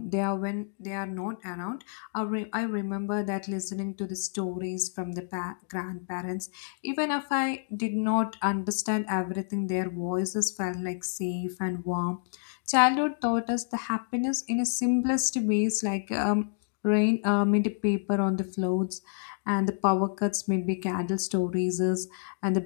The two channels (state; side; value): silent; right; digital silence